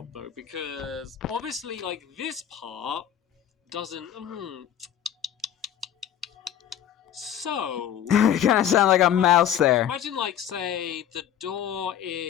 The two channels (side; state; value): right; quieter; 9.9 dB